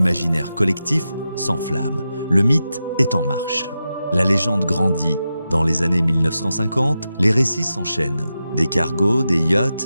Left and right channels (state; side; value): inverted; both; correlation -0.90